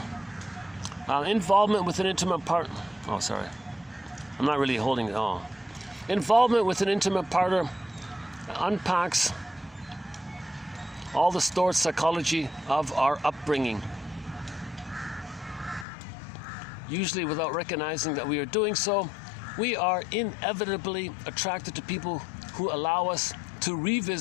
Involvement with an intimate partner. Oh, sorry. I'm not really holding it. Oh. Involvement with an intimate partner unpacks all the stored psychology of our upbringing, usually without recognizing that we are doing so. We are inevitably attracted to people who allow us to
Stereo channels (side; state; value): right; drops out; at 15.9 s